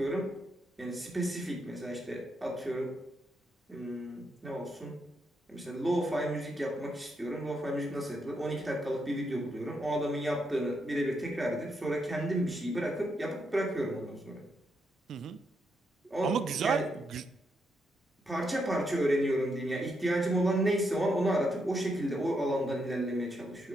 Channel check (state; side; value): normal; both; correlation 0.80